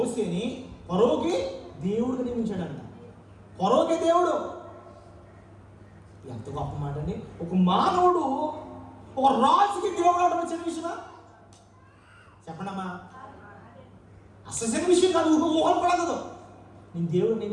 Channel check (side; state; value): both; identical; correlation 1.00